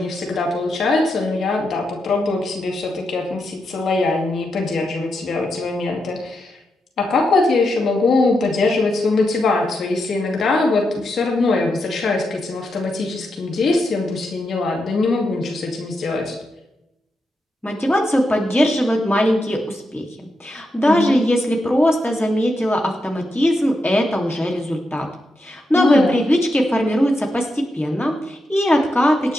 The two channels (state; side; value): normal; both; correlation 0.85